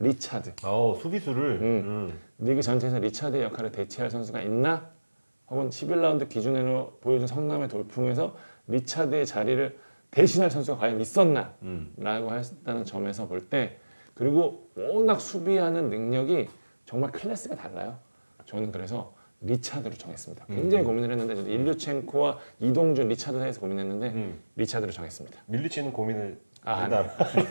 수비수를 리그 전체에서 리차드의 역할을 대체할 선수가 있나? 혹은 11라운드 기준으로 보여준 성남의 돌풍에서 리차드의 자리를 대신할 선수가 과연 있었나? 라고 했다는 점에서 볼 때 그리고 워낙 수비하는 능력이 정말 클래스가 달라요. 저는 그래서 리차드로 정했습니다. 굉장히 고민을 했는데 저도 일류첸코와 이동준, 리차드 사이에서 고민했는데 리차드로 정했습니다. 밀리치는 고민을 아, 한다.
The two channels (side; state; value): both; inverted; correlation -1.00